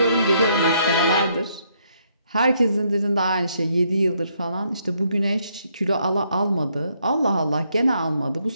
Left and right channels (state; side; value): inverted; both; correlation -0.73